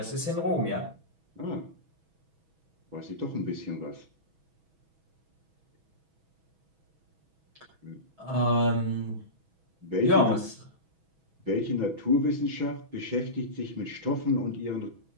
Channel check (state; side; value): late; left; 6.2 ms